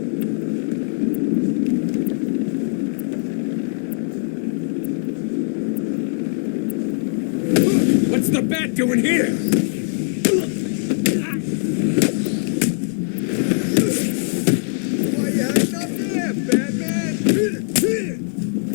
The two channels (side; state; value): right; silent; digital silence